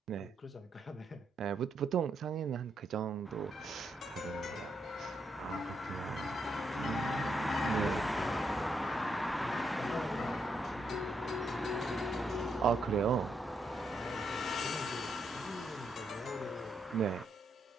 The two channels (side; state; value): both; normal; correlation 0.79